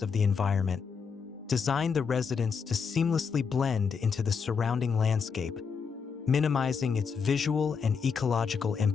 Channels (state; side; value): quieter; right; 5.9 dB